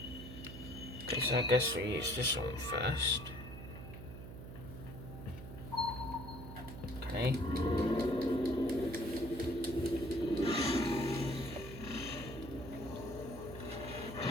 Okay, so I guess we use this one first. Okay.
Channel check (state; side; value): noise; right; hum, 11 dB below the sound